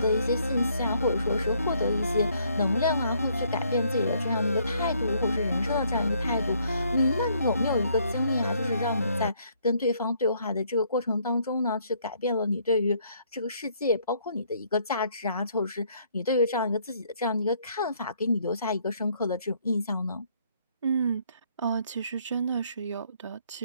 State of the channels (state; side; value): inverted; both; correlation -0.67